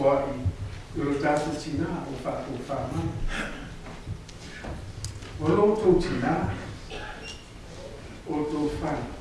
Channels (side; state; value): both; identical; correlation 1.00